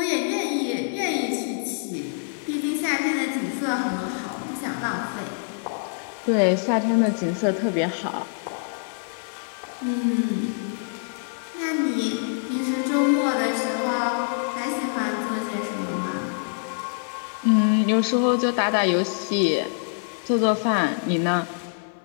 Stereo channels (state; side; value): silent; right; 58 dB below the other